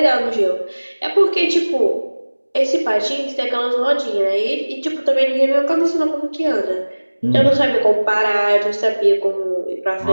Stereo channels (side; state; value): both; inverted; correlation -1.00